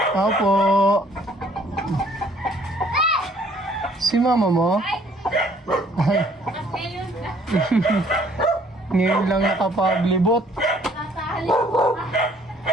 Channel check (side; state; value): both; normal; correlation 0.61